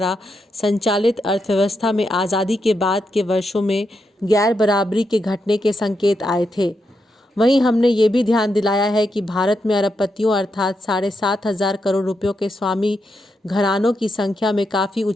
संचालित अर्थव्यवस्था में आज़ादी के बाद के वर्षों में गैर बराबरी के घटने के संकेत आए थे। वहीं हमने ये भी ध्यान दिलाया है कि भारत में अरबपतियों अर्थात 7,500 करोड़ रुपयों के स्वामी घरानों की संख्या में काफ़ी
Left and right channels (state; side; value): normal; both; correlation 0.84